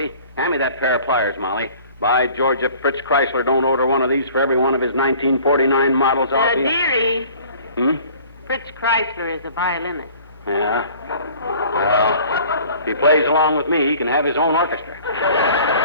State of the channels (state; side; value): inverted; both; correlation -0.49